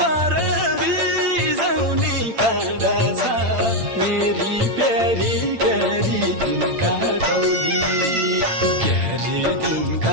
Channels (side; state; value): left; late; 8.9 ms